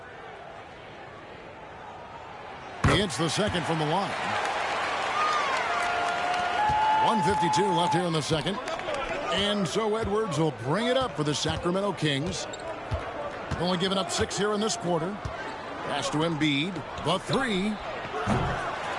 He hits the second from the line. 1:52 left here in the second. And so Edwards will bring it up for the Sacramento Kings. Only giving up 6 here in this quarter. Pass to Embiid. The 3.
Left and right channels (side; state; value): both; identical; correlation 1.00